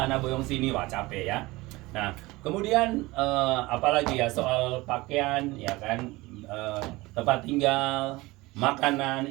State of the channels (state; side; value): quieter; left; 21.1 dB